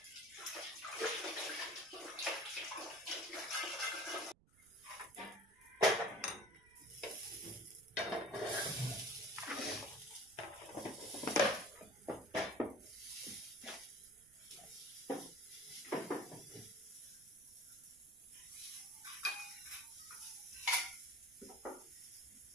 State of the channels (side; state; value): right; noise; rumble, 28 dB below the sound